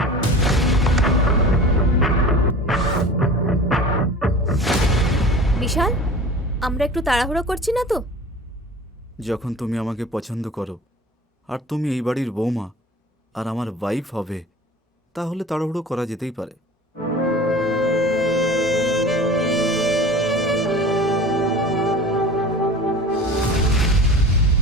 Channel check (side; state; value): both; normal; correlation 0.39